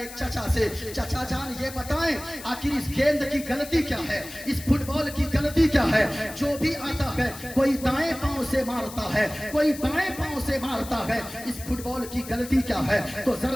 چچا سے, چچا جان یہ بتائیں آخر اس گیند کی غلطی کیا ہے, اس فٹ بال کی غلطی کیا ہے؟ جو بھی آتا ہے کوئی دائیں پاؤں سے مارتا ہے, کوئی بائیں پاؤں سے مارتا ہے, اس فٹ بال کی غلطی کیا ہے؟ تو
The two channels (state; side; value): noise; left; hiss, 14 dB below the sound